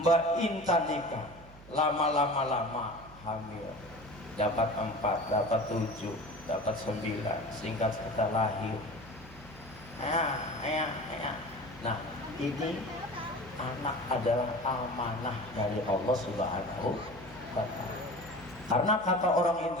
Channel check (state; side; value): noise; right; hum, 20 dB below the sound